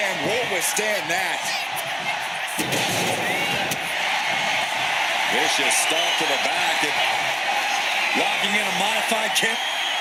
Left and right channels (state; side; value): identical; both; correlation 1.00